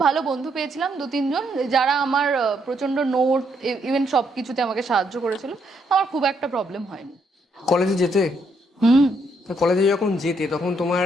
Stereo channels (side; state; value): both; normal; correlation 0.74